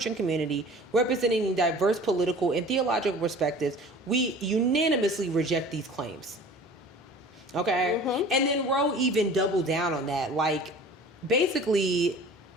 community, representing diverse political and theological perspectives, we unanimously reject these claims. Okay? And then Roe even doubled down on that. Like, basically,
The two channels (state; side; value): normal; both; correlation 0.44